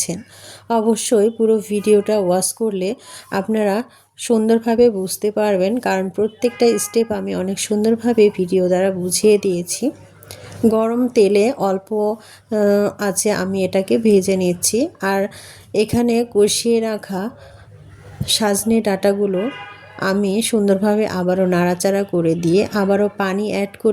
অবশ্যই পুরো ভিডিওটা ওয়াচ করলে আপনারা সুন্দরভাবে বুঝতে পারবেন, কারণ প্রত্যেকটা স্টেপ আমি অনেক সুন্দরভাবে ভিডিও দ্বারা বুঝিয়ে দিয়েছি। গরম তেলে অল্প আছে আমি এটাকে ভেজে নিচ্ছি। আর এখানে কষিয়ে রাখা সজনে ডাঁটাগুলো আমি সুন্দরভাবে আবারও নাড়াচাড়া করে দিয়ে আবারও পানি অ্যাড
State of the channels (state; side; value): identical; both; correlation 1.00